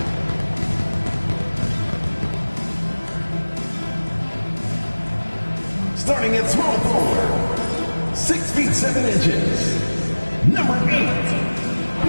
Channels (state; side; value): inverted; both; correlation -1.00